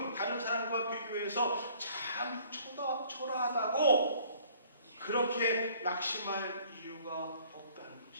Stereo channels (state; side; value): inverted; both; correlation -0.56